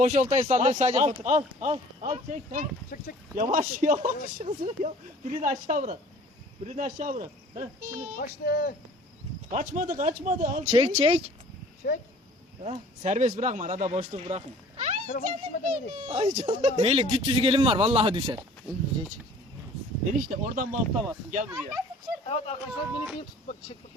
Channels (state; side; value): normal; both; correlation 0.50